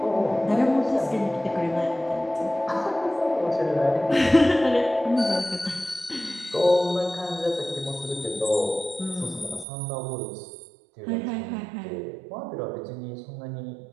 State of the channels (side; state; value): left; drops out; at 9.7 s